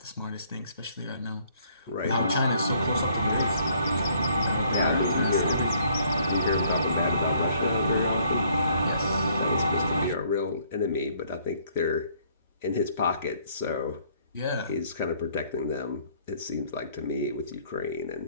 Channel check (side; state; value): both; inverted; correlation -0.63